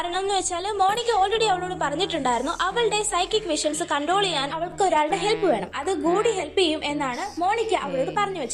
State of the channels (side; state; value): both; identical; correlation 1.00